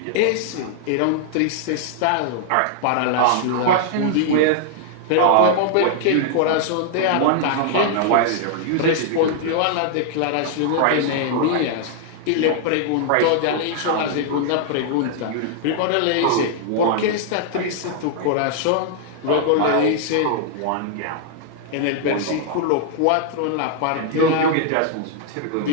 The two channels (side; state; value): both; different; correlation -0.01